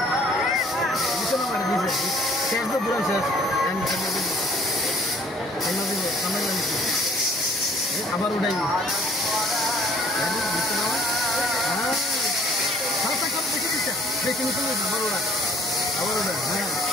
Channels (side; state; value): both; normal; correlation 0.56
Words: নিচে নামাই দিছে শেষ তো পুরো শেষ আবার উঠাই বেশি নিচে আবার ওরা হ্যাঁ